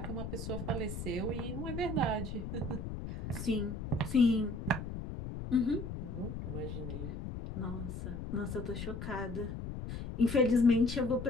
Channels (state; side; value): noise; left; rumble, 6 dB below the sound